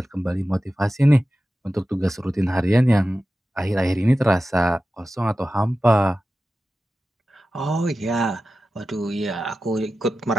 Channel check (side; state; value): both; normal; correlation 0.94